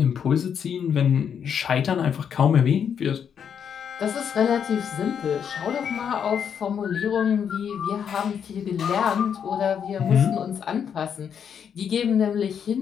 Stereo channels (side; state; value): right; quieter; 7.8 dB